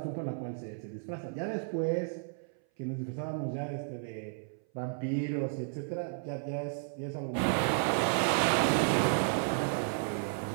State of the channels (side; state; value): left; silent; 56 dB below the other